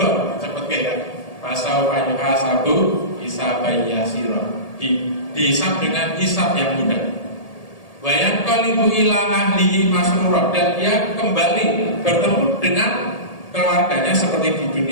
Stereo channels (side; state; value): right; late; 1.8 ms